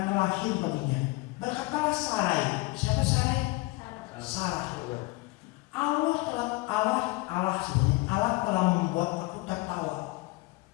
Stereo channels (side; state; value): right; quieter; 22.4 dB